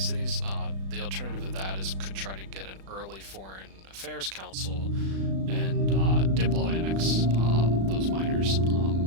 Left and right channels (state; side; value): late; left; 36 ms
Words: cities. The alternative to that is could try to get an early foreign affairs council and diplo annex those miners,